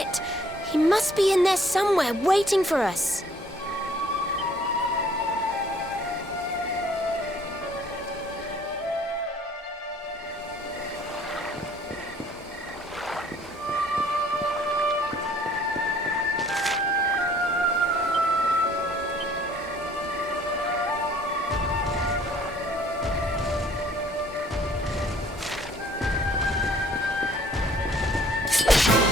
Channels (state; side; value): normal; both; correlation 0.58